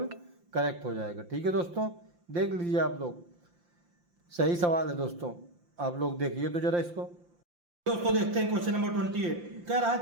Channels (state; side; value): late; left; 5.8 ms